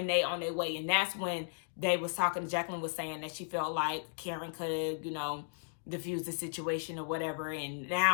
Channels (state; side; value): silent; right; digital silence